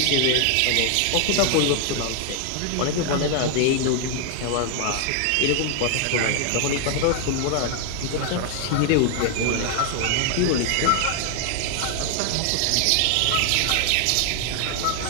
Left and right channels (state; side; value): different; both; correlation 0.00